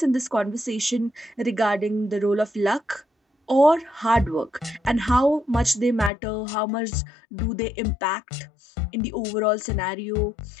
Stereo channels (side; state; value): right; drops out; at 6.1 s